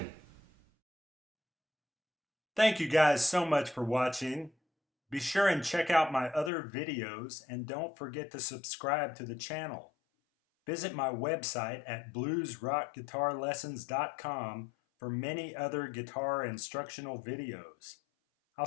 Thank you guys so much for watching. Be sure and check out my other videos and don't forget to subscribe to the channel. Visit my website at bluesrockguitarlessons.com for many other guitar instructional videos. I'll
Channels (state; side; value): drops out; right; at 6.5 s